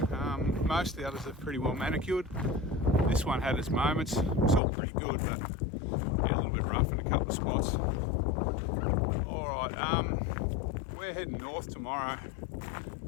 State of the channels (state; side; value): drops out; right; at 4.6 s